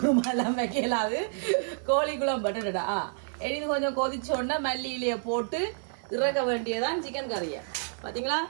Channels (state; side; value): silent; left; digital silence